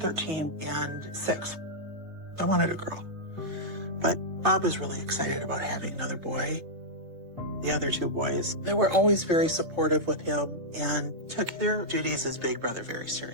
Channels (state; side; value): late; left; 3.3 ms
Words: 13 and 6. I wanted a girl. But Bob was really excited about having another boy. The other 2 boys, they were always very supportive with him and took their duties as big brother very